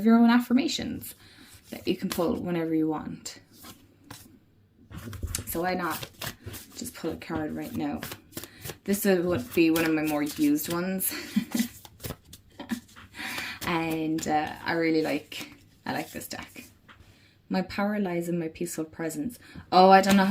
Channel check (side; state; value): both; identical; correlation 1.00